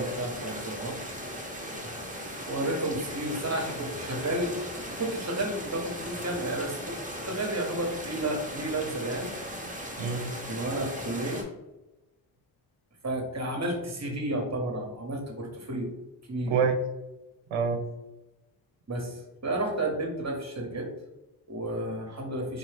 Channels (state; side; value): normal; both; correlation -0.01